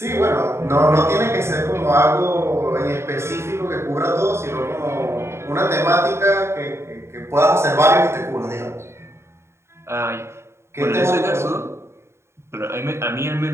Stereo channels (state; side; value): late; left; 0.13 ms